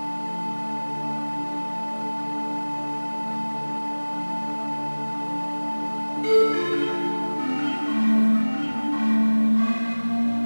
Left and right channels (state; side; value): inverted; both; correlation -1.00